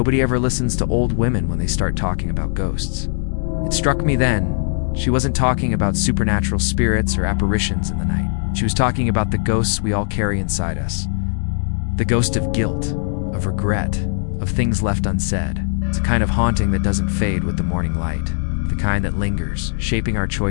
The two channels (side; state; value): right; silent; digital silence